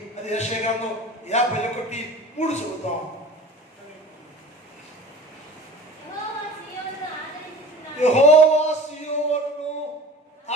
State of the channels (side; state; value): both; normal; correlation 0.40